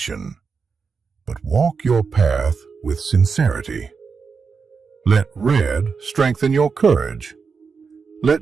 but walk your path with sincerity. Let red strengthen your courage.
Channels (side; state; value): left; quieter; 5.3 dB